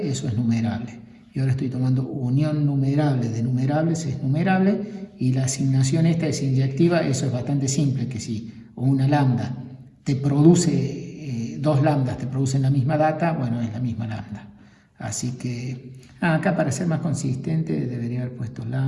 eso es numerable. Y ahora estoy tomando unión numerable de numerables, es numerable, y la asignación esta es inyectiva, eso es bastante simple, que si una lambda te produce, dos lambdas te producen la misma data, bueno, es la misma lambda. Así que, acá para ser más consistente debería haber puesto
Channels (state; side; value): identical; both; correlation 1.00